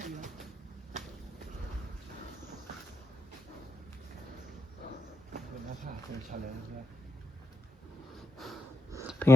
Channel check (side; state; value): both; normal; correlation 0.79